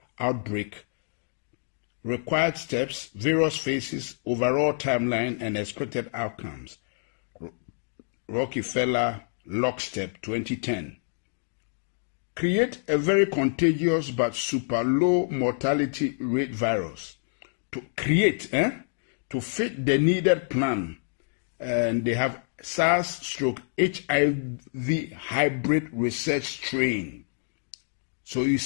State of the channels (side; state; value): right; silent; digital silence